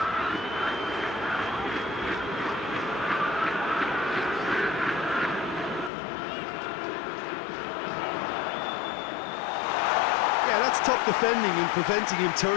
Yeah, that's top defending and preventing him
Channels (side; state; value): right; drops out; at 5.9 s